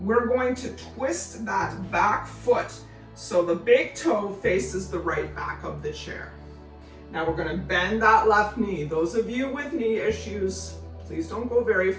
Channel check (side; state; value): both; identical; correlation 1.00